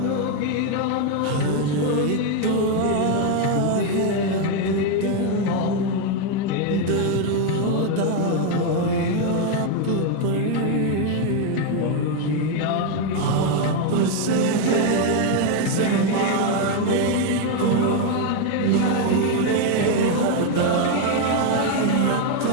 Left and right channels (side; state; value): both; different; correlation 0.01